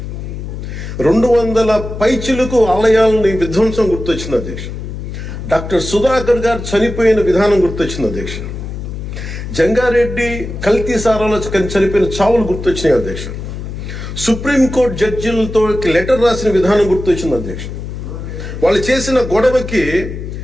200 పైచిలకు ఆలయాలని విధ్వంసం గుర్తొచ్చింది అధ్యక్ష. డాక్టర్ సుధాకర్ గారు చనిపోయిన విధానం గుర్తొచ్చింది అధ్యక్ష. జంగారెడ్డి కల్తీ సారాలో చనిపోయిన చావులు గుర్తొచ్చినాయి అధ్యక్ష. సుప్రీంకోర్టు జడ్జిలతో లెటర్ రాసిన విధానం గుర్తొచ్చింది అధ్యక్ష. వాళ్ళు చేసిన గొడవకి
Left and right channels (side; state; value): left; noise; hum, 8 dB below the sound